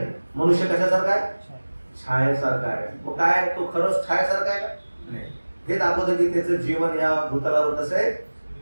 मनुष्य कशासारखा आहे, छायेसारखा आहे. मग काय तो खरंच छायेसारखा आहे का, नाही. हे दाखवतं की त्याचं जीवन या भूतलावर कसं आहे,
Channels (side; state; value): both; inverted; correlation -1.00